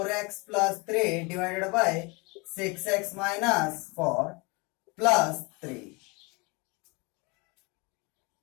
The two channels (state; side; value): quieter; right; 28.3 dB